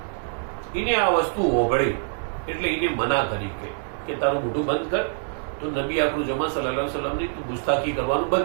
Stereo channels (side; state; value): left; silent; digital silence